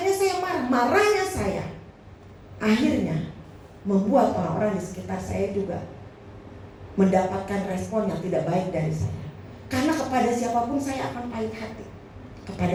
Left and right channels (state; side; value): identical; both; correlation 1.00